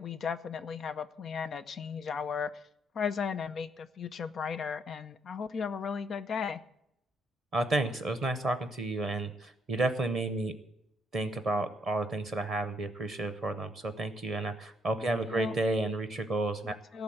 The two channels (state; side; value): normal; both; correlation 0.71